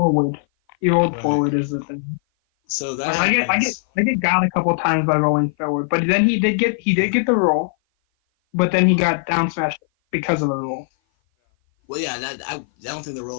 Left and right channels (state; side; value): silent; right; 57 dB below the other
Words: He rolled forward is the thing. So that I get got a couple times by rolling forward, but then he did get the roll, but then he got down smashed because of the roll. Well, yeah, I don't think the